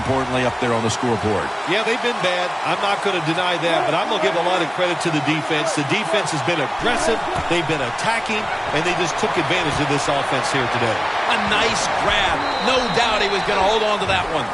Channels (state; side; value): identical; both; correlation 1.00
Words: up there on the scoreboard. Yeah, they've been bad. I'm not going to deny that, but I'm going to give a lot of credit to the defense. The defense has been aggressive. They've been attacking, and they just took advantage of this offense here today. A nice grab. No doubt he was going to hold on to that one.